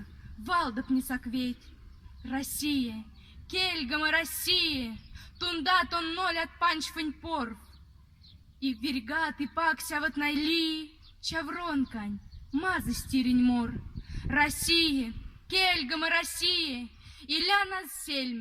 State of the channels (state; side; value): identical; both; correlation 1.00